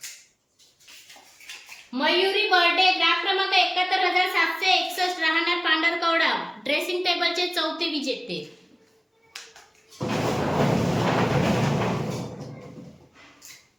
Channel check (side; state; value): both; identical; correlation 1.00